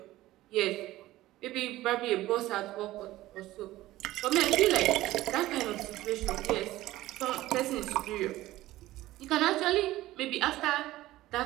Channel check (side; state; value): left; quieter; 16.3 dB